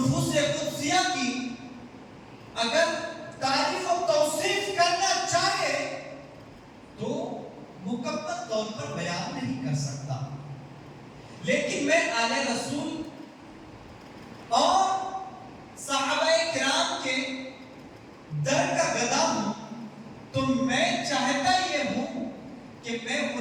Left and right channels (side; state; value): both; identical; correlation 1.00